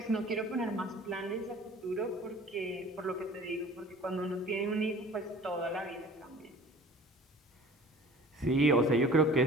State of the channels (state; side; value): normal; both; correlation 0.46